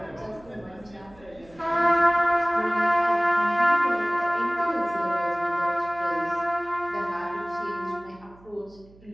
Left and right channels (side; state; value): right; noise; hum, 25 dB below the sound